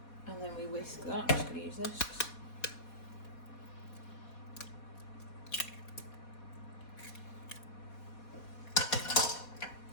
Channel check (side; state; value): right; late; 4.2 ms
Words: then we whisk that. I'm just going to use this.